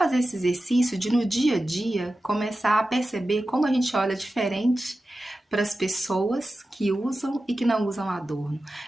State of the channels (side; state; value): both; normal; correlation 0.94